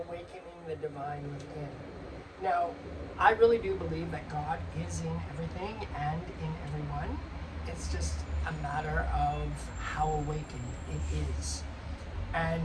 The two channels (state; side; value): identical; both; correlation 1.00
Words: the divine within. Now, I really do believe that God is in everything and in everyone. It's just a matter of how awakened it is. And